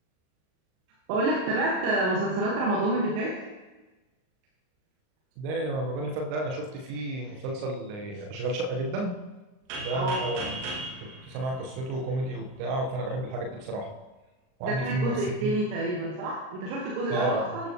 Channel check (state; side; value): late; left; 38 ms